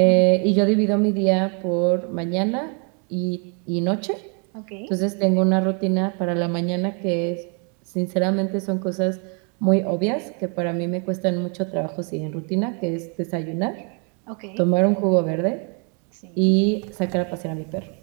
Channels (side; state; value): left; quieter; 37.5 dB